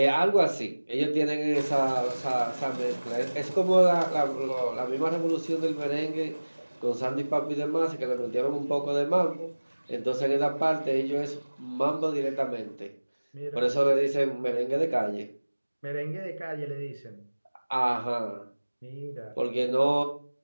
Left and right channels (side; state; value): both; inverted; correlation -1.00